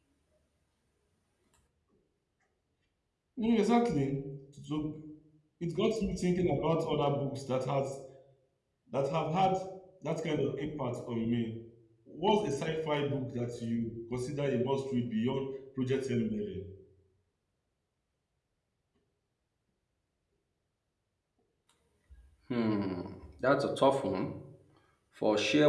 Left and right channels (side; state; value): both; identical; correlation 1.00